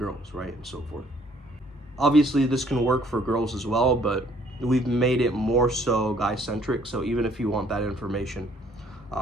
right? And so forth. Obviously, this can work for girls as well, but we've made it more so guy-centric. So even if you want that information,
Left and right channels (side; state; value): both; normal; correlation 0.62